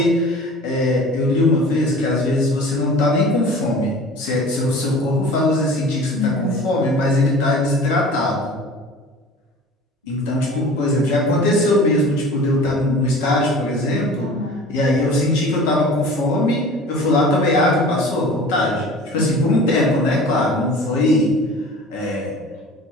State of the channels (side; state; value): both; normal; correlation 0.41